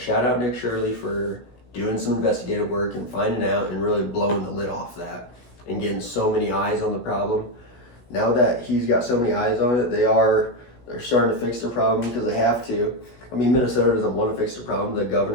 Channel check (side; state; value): right; late; 17 ms